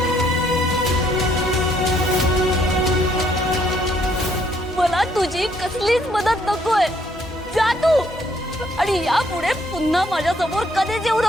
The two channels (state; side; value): normal; both; correlation 0.68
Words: मला तुझी कसलीच मदत नकोय, जा तू आणि यापुढे पुन्हा माझ्या समोर कधीच येऊ